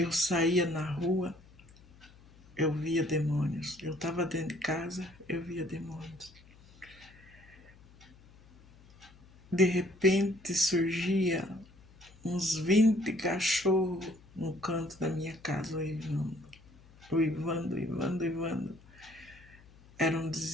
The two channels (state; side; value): noise; left; hum, 24 dB below the sound